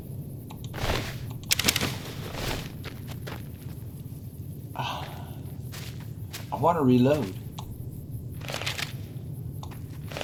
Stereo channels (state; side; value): identical; both; correlation 1.00